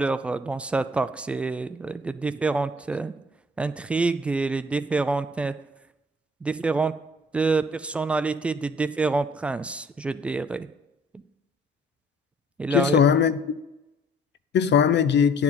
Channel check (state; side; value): normal; both; correlation 0.56